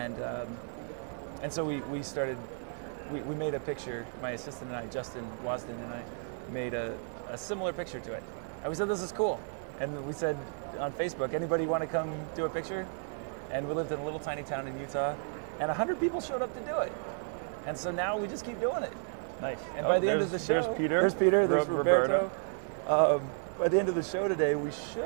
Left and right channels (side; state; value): left; silent; 56 dB below the other